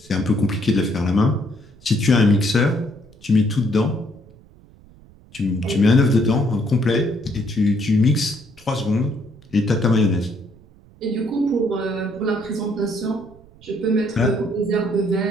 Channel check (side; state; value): right; noise; rumble, 25 dB below the sound